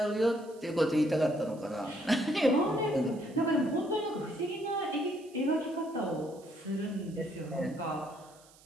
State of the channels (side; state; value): right; noise; hiss, 26 dB below the sound